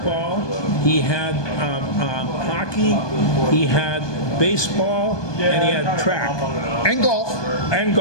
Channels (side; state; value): right; late; 1.2 ms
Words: he had hockey, he had baseball, and he had track And golf. and